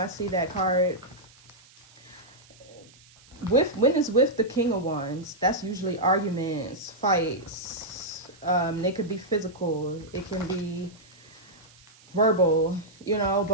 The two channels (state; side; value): noise; right; hiss, 26 dB below the sound